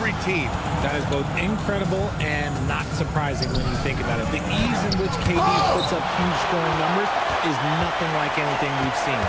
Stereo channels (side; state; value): both; identical; correlation 1.00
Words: team. That is both incredible and not surprising when you think about it. The ease in which KD puts up huge scoring numbers is nothing like anything we've seen.